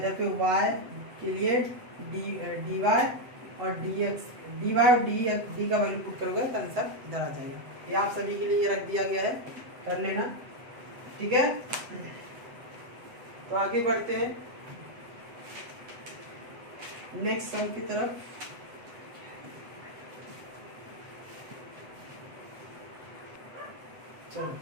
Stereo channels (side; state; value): left; late; 8.0 ms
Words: पे y के लिए dy और dx, dy और d का वैल्यू पुट करोगे तो आंसर इधर आ जाएगा, ये आप सभी के लिए रख दिया गया है, कर लेना, ठीक है, तो आगे बढ़ते हैं नेक्स्ट सम की तरफ। चलो